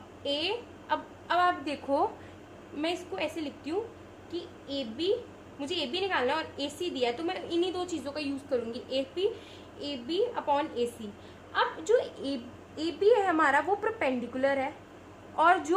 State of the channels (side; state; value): both; identical; correlation 1.00